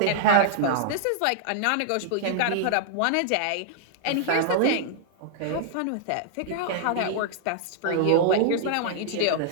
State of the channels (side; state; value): both; different; correlation -0.01